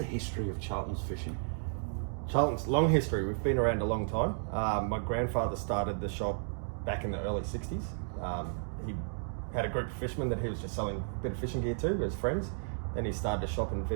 history of Charltons Fishing. Charlton's long history. We've been around a long time. My grandfather started the shop back in the early 60s. He had a group of fishermen that he was just selling a bit of fishing gear to as friends. Then he started a shop in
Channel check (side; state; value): left; silent; digital silence